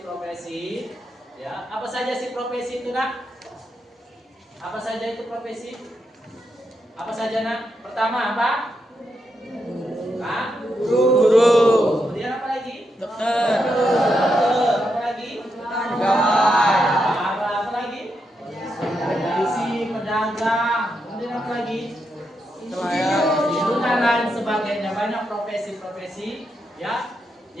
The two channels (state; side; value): normal; both; correlation 0.83